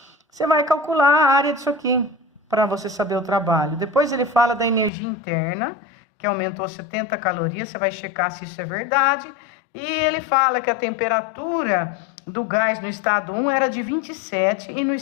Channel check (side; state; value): right; drops out; at 4.9 s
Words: Você vai calcular a área disso aqui, para você saber o trabalho. Depois ele fala da energia interna, que aumentou 70 calorias, você vai checar se isso é verdade. E ele fala que a temperatura do gás no estado 1 era de 27 e no